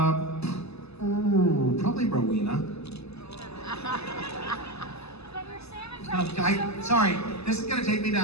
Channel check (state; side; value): late; right; 0.79 ms